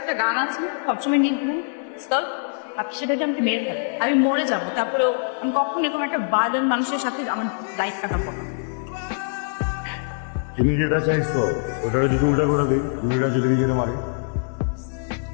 একটা গান আছে সবসময় নিয়ে ঘুম আপনি সেটাকে আমাকে মেরে ফেলেন, আমি মরে যাবো, তারপরেও আমি কখন এরকম একটা বার্ডেন মানুষের সাথে আমার লাইফ কাটাবো। তুমি যেটা চাইছো ওটা যদি উল্টা করে দিই দুইটা যদি নিজের মারে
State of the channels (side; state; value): right; silent; digital silence